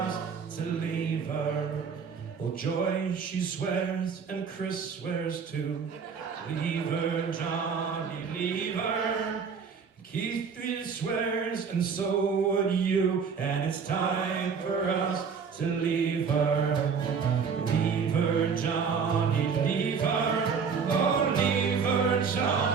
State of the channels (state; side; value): quieter; left; 6.0 dB